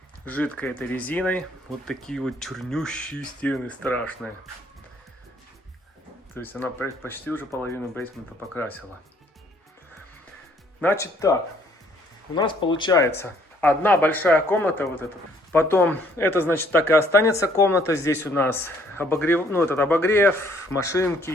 жидкой этой резиной. Вот такие вот чернющие стены страшные. То есть она почти уже половину бейсмента покрасила. Значит так. У нас получается одна большая комната вот эта. Потом это значит так и останется комната. Здесь у нас обогрев, ну этот обогрев,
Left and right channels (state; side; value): normal; both; correlation 0.63